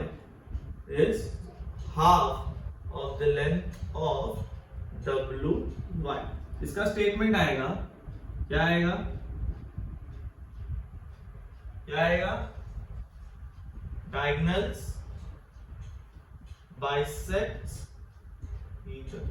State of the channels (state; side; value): identical; both; correlation 1.00